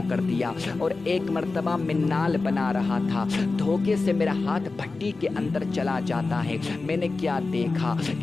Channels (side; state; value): right; quieter; 3.7 dB